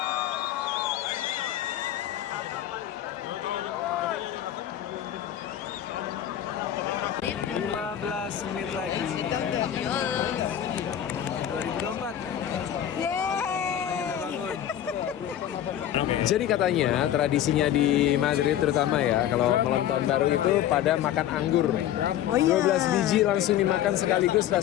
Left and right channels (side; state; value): right; quieter; 11.2 dB